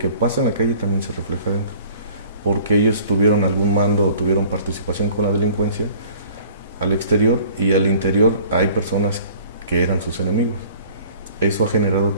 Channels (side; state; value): both; inverted; correlation -0.51